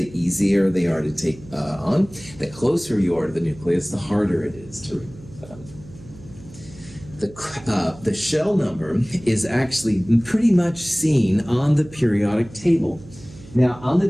easier they are to take on. The closer you are to the nucleus, the harder it is to remove them. The shell number is actually pretty much seen on the periodic table. Now, on the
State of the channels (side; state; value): right; noise; hum, 19 dB below the sound